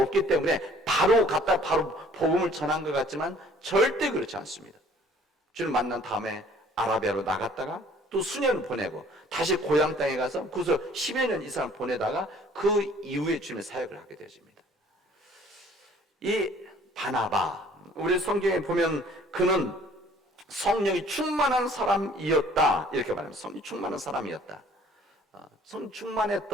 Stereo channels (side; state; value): both; normal; correlation 0.56